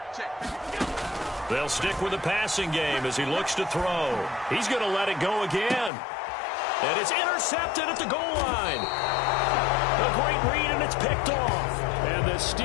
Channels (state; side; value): drops out; right; at 5.9 s